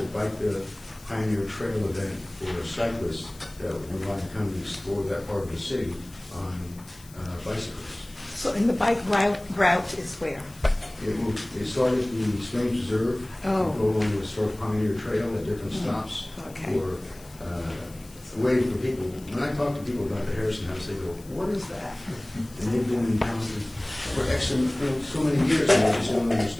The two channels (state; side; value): noise; left; hiss, 22 dB below the sound